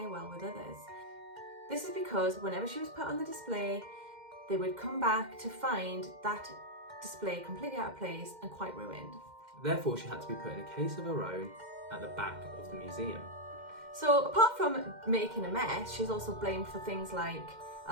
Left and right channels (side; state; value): left; late; 2.1 ms